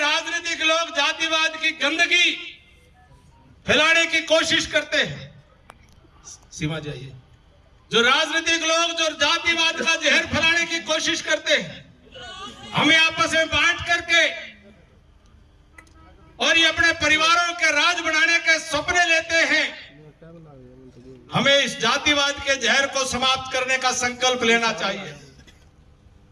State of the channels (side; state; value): both; identical; correlation 1.00